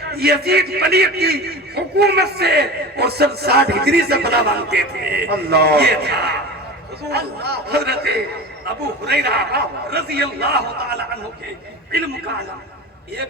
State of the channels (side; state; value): both; normal; correlation 0.32